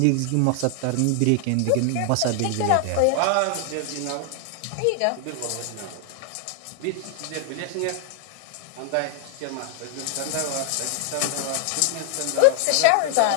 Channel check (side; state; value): both; different; correlation 0.00